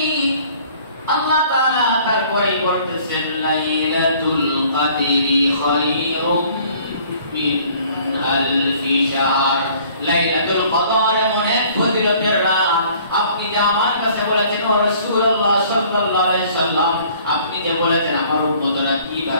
আল্লাহ তাআলা তারপরে বলতেছেন, লাইলাতুল কদরি খায়রুম মিন আলফি শাহর। লাইলাতুল কদর এমন এক ফজিলতের রাত, আপনি যে আমার কাছে বলেছেন, ও রাসূলুল্লাহ সাল্লাল্লাহু আলাইহি সাল্লাম, আপনি যে বলেছেন আমার উম্মতরা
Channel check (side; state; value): both; inverted; correlation -0.55